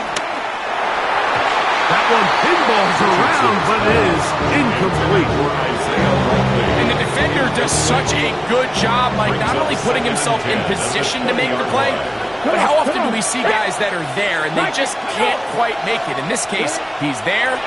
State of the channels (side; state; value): both; identical; correlation 1.00